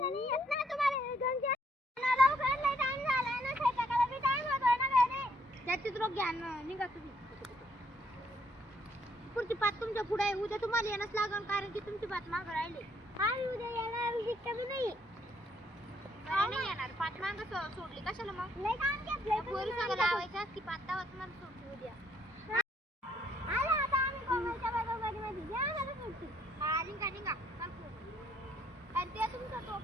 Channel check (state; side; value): normal; both; correlation 0.69